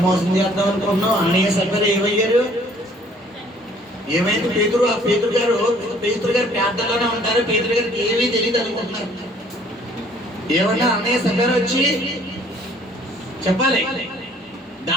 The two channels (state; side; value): normal; both; correlation 0.58